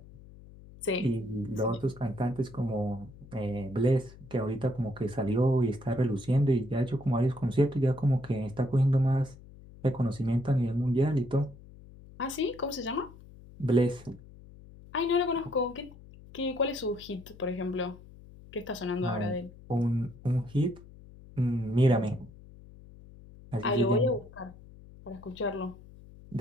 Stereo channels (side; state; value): left; noise; hum, 20 dB below the sound